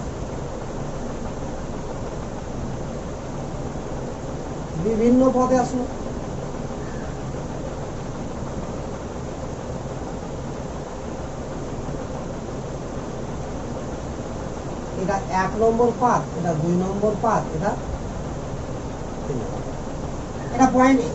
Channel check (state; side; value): identical; both; correlation 1.00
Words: বিভিন্ন পদে আসলো। এটা 1 নম্বর পাথ, এটা 2 নম্বর পাথ, এটা পয়েন্ট।